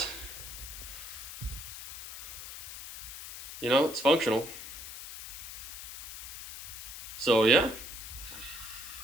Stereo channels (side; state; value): left; noise; hiss, 10 dB below the sound